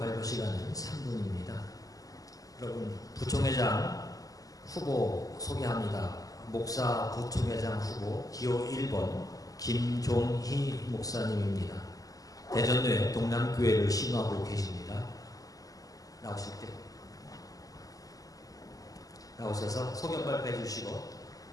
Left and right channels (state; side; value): late; right; 0.17 ms